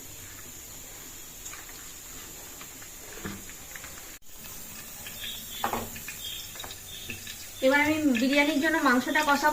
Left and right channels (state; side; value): identical; both; correlation 1.00